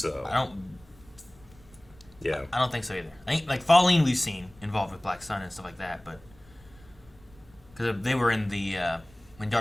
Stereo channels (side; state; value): right; noise; rumble, 25 dB below the sound